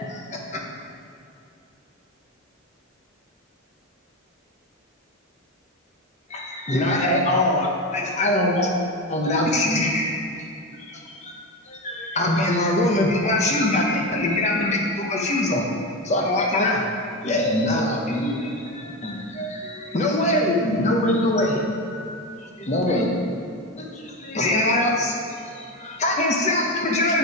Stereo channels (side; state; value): both; normal; correlation 0.18